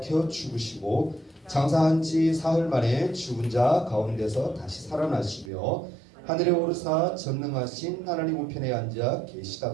죽으시고 장사한 지 사흘 만에 죽은 자 가운데서 다시 살아나시며 하늘에 오르사 전능하신 하나님 우편에 앉아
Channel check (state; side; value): drops out; left; at 5.5 s